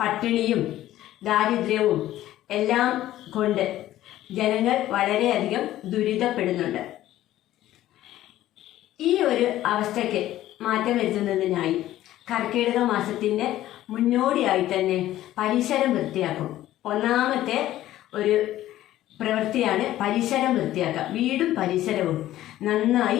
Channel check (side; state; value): right; quieter; 14.1 dB